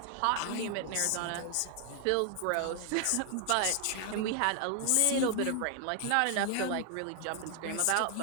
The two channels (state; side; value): different; both; correlation 0.00